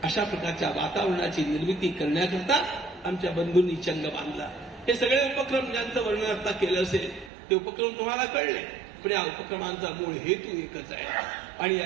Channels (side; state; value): left; drops out; at 7.3 s